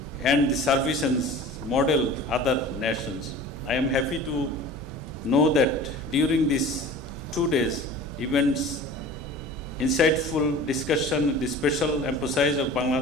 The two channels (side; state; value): both; normal; correlation 0.40